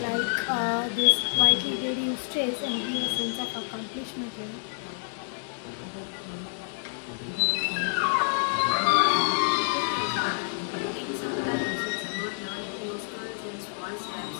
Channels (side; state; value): right; silent; digital silence